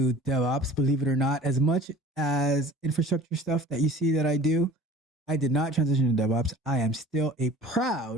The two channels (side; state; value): both; normal; correlation 0.45